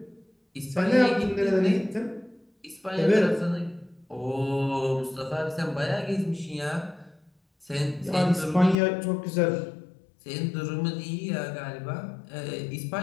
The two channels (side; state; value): right; drops out; at 8.8 s